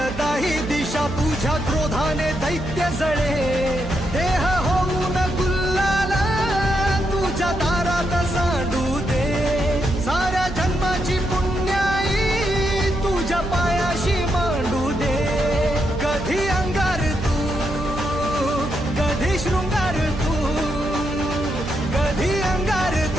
दिशा, तुझ्या क्रोधाने दैत्य जळे, देह होऊन गुल्लाल तुझ्या दारात सांडू दे, साऱ्या जन्माची पुण्याई तुझ्या पायाशी मांडू दे, कधी अंगार तू कधी शृंगार तू, कधी अंगार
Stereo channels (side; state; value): right; noise; hum, 9 dB below the sound